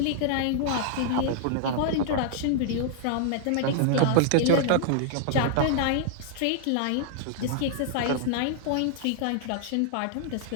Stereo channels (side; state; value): both; different; correlation -0.01